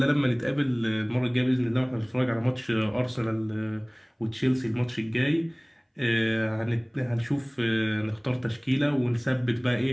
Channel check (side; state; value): both; identical; correlation 1.00